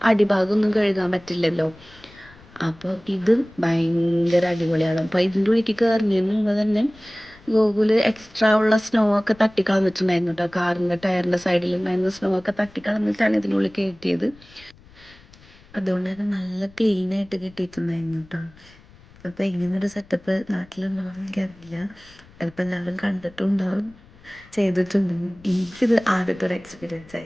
അടിഭാഗമൊന്നും കഴുകാൻ പറ്റില്ലല്ലോ. അപ്പോൾ ഇത് ഭയങ്കര അടിപൊളിയാണ്. അപ്പോൾ ഇതിൻ്റെ ഉള്ളിലേക്ക് കയറുന്നതിന് മുമ്പ് തന്നെ ഗൂഗിൾ എക്സ്ട്രാ ഉള്ള സ്നോ ഒക്കെ തട്ടിക്കളഞ്ഞിട്ടുണ്ടായിരുന്നു കേട്ടോ. കാറിൻ്റെ ടയറിൻ്റെ സൈഡിലുണ്ടായിരുന്ന സ്നോ ഒക്കെ തട്ടിക്കളഞ്ഞിട്ടാണ് ഇതിനുള്ളിൽ കയറ്റിയത്. അതുകൊണ്ട് തന്നെ നല്ല ക്ലീനായിട്ട് കിട്ടിയിട്ടുണ്ടായിരുന്നു കേട്ടോ. അപ്പോൾ ഇങ്ങനൊരു സെറ്റപ്പ് നാട്ടിലുണ്ടാവും എനിക്കറിയില്ല. ചിലപ്പോൾ എല്ലാവരും കണ്ടിട്ടുണ്ടാവും, ചെയ്തിട്ടുണ്ടാവും. എനിക്കിത് ആദ്യത്തെ ഒരു എക്സ്പീരിയൻസ്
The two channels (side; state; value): left; noise; rumble, 25 dB below the sound